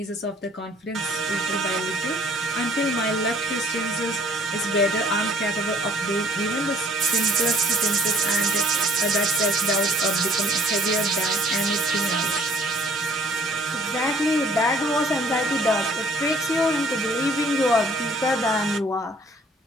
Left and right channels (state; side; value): normal; both; correlation 0.57